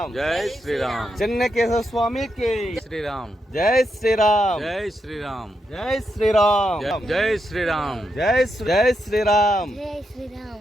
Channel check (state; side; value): normal; both; correlation 0.83